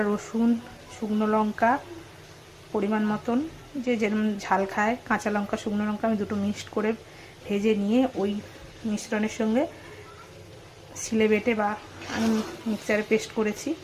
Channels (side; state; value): both; identical; correlation 1.00